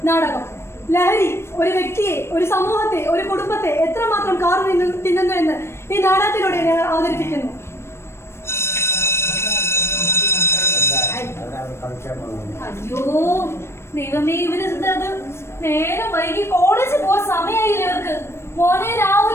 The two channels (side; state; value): right; late; 0.12 ms